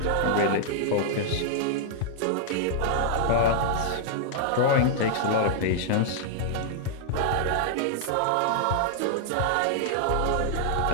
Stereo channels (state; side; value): different; both; correlation -0.01